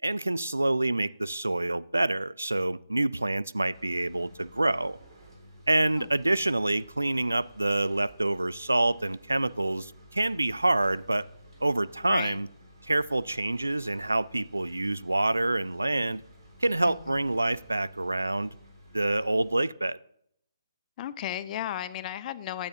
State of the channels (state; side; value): inverted; both; correlation -0.95